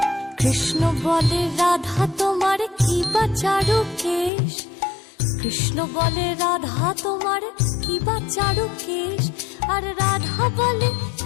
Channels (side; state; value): right; drops out; at 4.3 s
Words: কৃষ্ণ বলে রাধা তোমার কি বা চারু কেশ, কৃষ্ণ বলে রাধা তোমার কি বা চারু কেশ। আর রাধা বলে